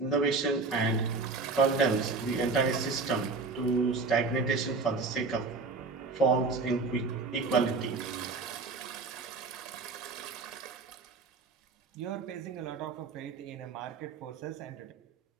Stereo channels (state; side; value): quieter; left; 4.1 dB